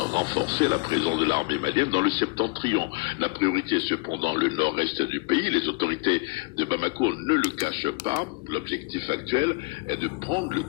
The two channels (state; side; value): quieter; right; 27.5 dB